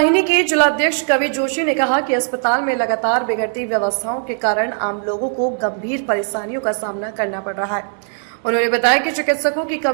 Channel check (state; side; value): silent; left; digital silence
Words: के जिलाध्यक्ष कवि जोशी ने कहा कि अस्पताल में लगातार बिगड़ती व्यवस्थाओं के कारण आम लोगों को गंभीर परेशानियों का सामना करना पड़ रहा है। उन्होंने बताया कि चिकित्सकों की